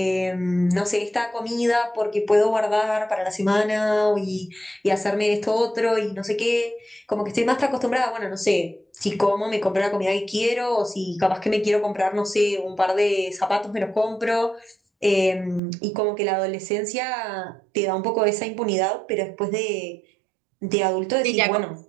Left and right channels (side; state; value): left; drops out; at 15.6 s